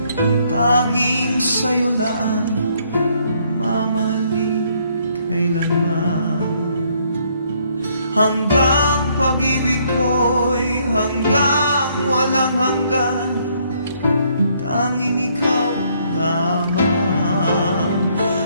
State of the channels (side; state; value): both; inverted; correlation -0.68